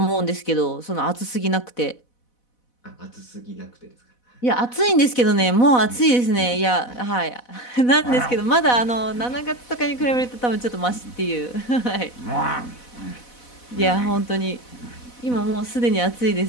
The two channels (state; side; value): late; right; 4.1 ms